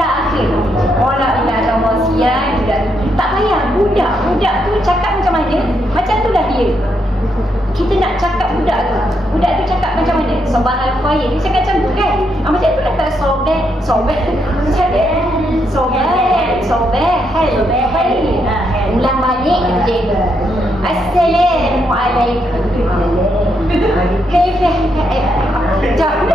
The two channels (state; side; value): normal; both; correlation 0.78